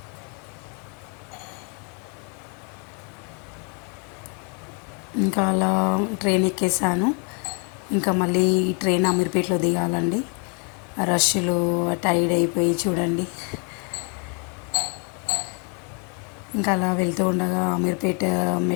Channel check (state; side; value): quieter; right; 37.4 dB